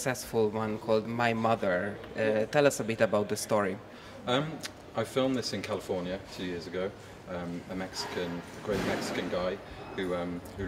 one called My Mother. Tell us a bit about the story. I filmed this in California 2 years ago. A great Mexican guy who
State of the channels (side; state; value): both; identical; correlation 1.00